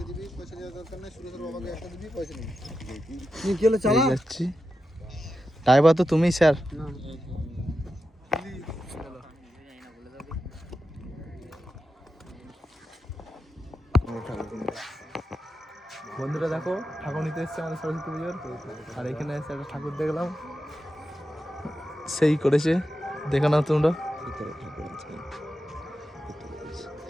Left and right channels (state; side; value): normal; both; correlation 0.89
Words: কি হলো চালা যাচ্ছি ড্রাইভার তো তুমি স্যার বন্ধুরা দেখো ঠাকুর নিতে এসছে আমাদের সরস্বতী পুজোর আর এখানে এসে একটা ঠাকুর দেখলাম সেই করেছে দেখে নাও তোমরা